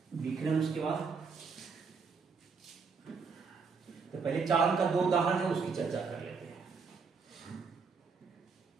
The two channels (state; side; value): quieter; left; 5.2 dB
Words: विकिरण उसके बाद। तो पहले चालन का दो उदाहरण है, उसकी चर्चा कर लेते हैं।